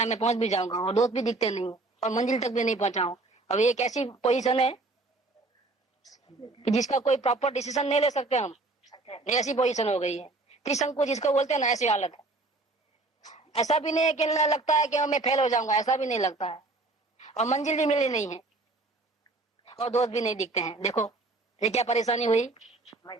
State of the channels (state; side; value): quieter; left; 3.2 dB